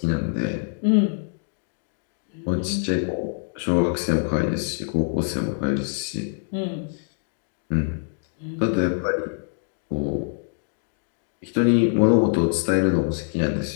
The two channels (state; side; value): silent; right; digital silence